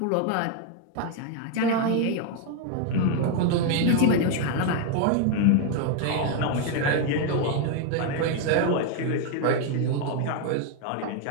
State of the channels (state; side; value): different; both; correlation 0.01